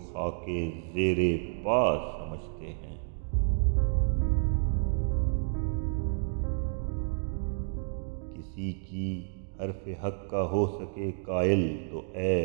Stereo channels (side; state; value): left; silent; 58 dB below the other